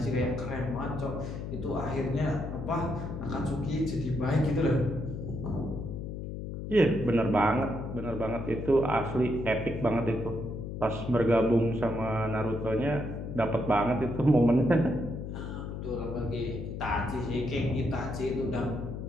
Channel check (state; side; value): noise; left; hum, 6 dB below the sound